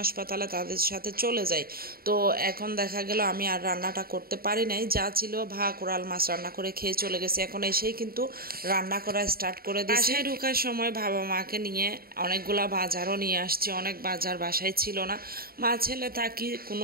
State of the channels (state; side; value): late; left; 0.43 ms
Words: তাদের সাথে চলে যাই। তো এখন দেখা গেল আমি আর রান্নাটা করতে পারি নাই, যা ছিল কোরাল মাছ রান্না করে খেয়ে চলে গেছে। এখন এসেই কিন্তু রান্না করা স্টার্ট করে দিয়েছি। বাসায় ঢোকার সময় বাবা মাকে নিয়ে অনেকগুলা বাজারও নিয়ে আসছি, অনেক বাজার বাসায় ছিল না। মা ছেলে থাকি,